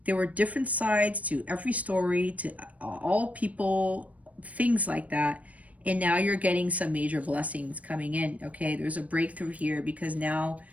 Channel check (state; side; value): late; left; 0.069 ms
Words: there were different sides to every story, to all people, things like that. And now you're getting some major blessings coming in, okay? There's a breakthrough here, because now